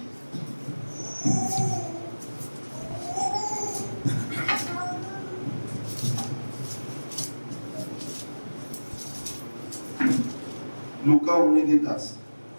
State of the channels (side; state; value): both; inverted; correlation -1.00